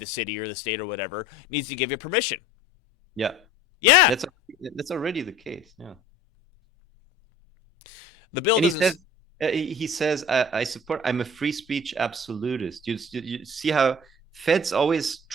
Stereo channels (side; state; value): both; normal; correlation 0.45